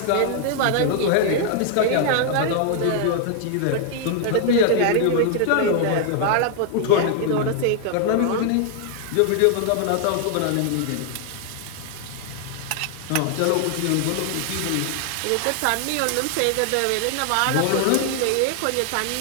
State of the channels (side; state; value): both; different; correlation 0.00